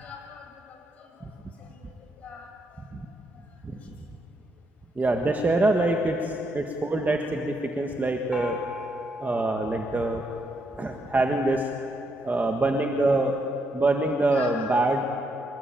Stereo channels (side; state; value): both; normal; correlation 0.77